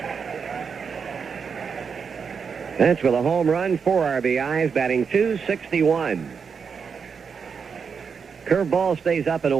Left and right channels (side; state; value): left; quieter; 6.1 dB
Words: Bench with a home run, 4 RBIs, batting .261. Curveball stays up and